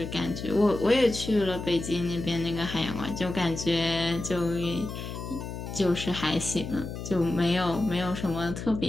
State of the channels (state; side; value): noise; left; hum, 8 dB below the sound